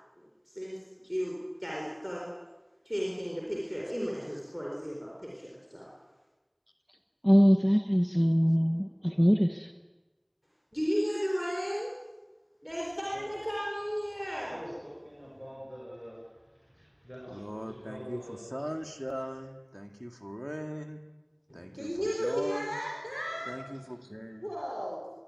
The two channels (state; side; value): identical; both; correlation 1.00